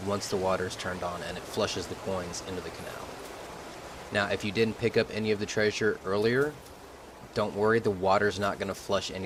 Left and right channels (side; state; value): both; identical; correlation 1.00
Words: once the water is turned on and it flushes the coins into the canal. Now, if you didn't pick up any of the treasure earlier, don't worry, the water's not going to flush